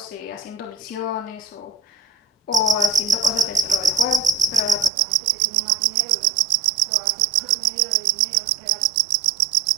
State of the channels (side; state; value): left; drops out; at 4.9 s